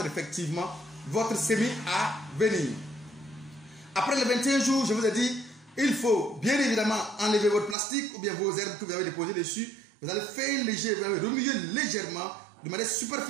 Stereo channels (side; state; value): left; drops out; at 7.8 s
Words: effectivement votre semis à venir. Après les 21 jours, je vous ai dit, il faut bien évidemment enlever votre plastique ou bien vos herbes que vous avez déposées dessus. Vous allez faire léger, vous allez remuer légèrement de manière